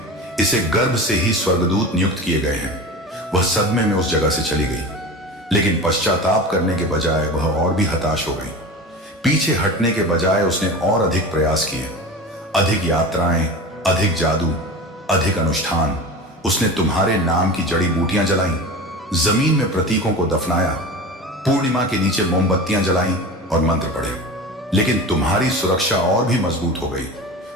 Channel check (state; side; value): normal; both; correlation 0.31